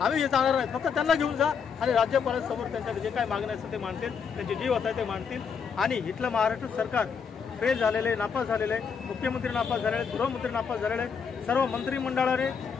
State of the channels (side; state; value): right; quieter; 6.4 dB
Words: आम्ही हे जाणार नाहीत, फक्त त्यांना घेऊन जा आणि राज्यपालांसमोर त्यांच्या जे काही मागण्या असतात ते मांडतील, त्यांचे जीव होत आहे ते मांडतील आणि इथलं महाराष्ट्र सरकार फेल झालेले, नापास झालेले, मुख्यमंत्री नापास झालेले, गृहमंत्री नापास झालेले, सर्व मंत्रिमंडळाने